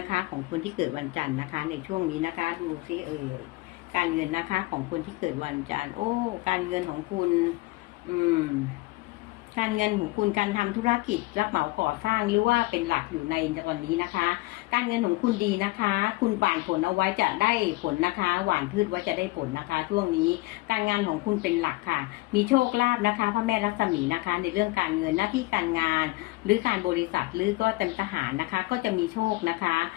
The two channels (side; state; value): right; quieter; 21.7 dB